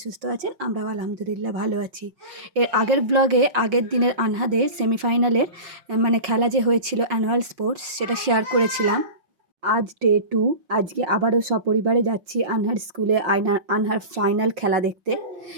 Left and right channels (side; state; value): left; late; 5.7 ms